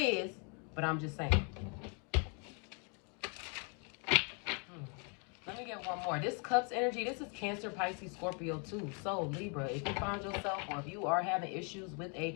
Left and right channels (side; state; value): right; quieter; 36.6 dB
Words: but I'm just saying. Let me get one more. This Cups energy, this is Cancer, Pisces, Scorpio too. So Libra, if you find yourself, or if you are having issues with